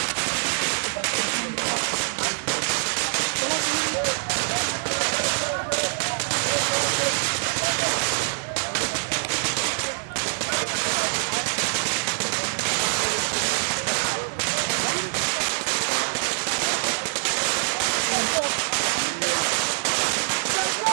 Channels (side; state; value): left; silent; 62 dB below the other